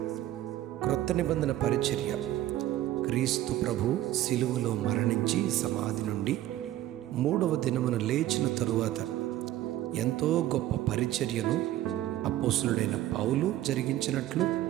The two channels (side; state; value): left; quieter; 14.0 dB